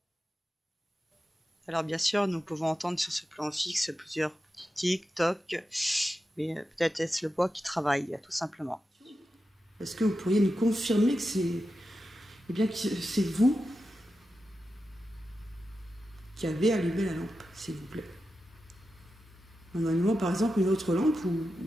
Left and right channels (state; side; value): normal; both; correlation 0.90